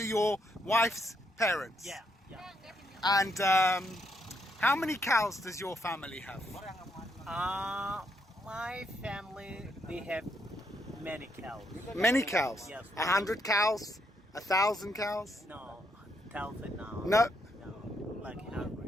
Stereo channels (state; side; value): normal; both; correlation 0.76